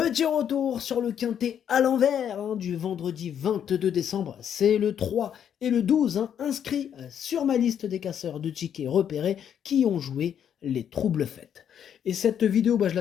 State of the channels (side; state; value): right; quieter; 8.9 dB